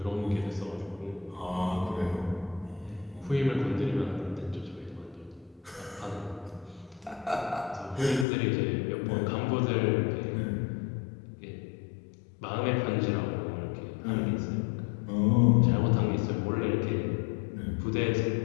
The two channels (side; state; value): right; drops out; at 8.2 s